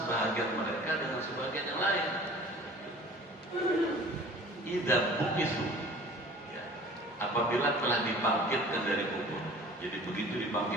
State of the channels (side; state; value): both; normal; correlation 0.45